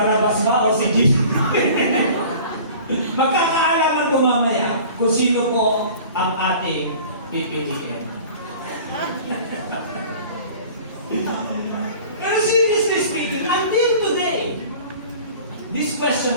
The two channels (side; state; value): both; inverted; correlation -0.44